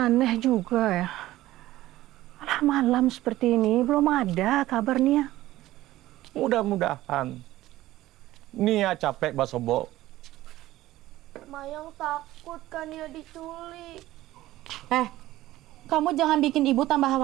juga ya. Alah, malam seperti ini belum ada kabar Nia. Mudah-mudahan. Nia capek basobo. Mayang takut kan Nia diculik. Kamu jangan bikin ibu tambah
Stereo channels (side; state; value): left; quieter; 15.9 dB